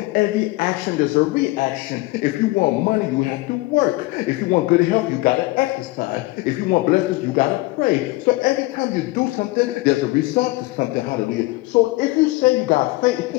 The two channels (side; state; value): right; quieter; 20.9 dB